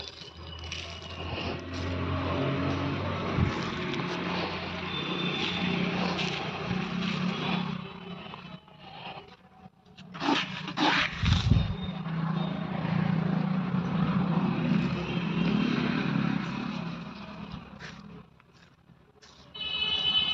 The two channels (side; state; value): both; identical; correlation 1.00